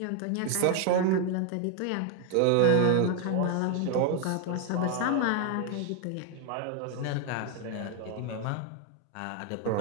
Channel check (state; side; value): different; both; correlation 0.01